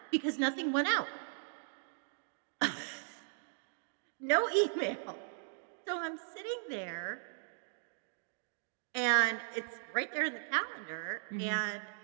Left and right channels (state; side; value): silent; left; digital silence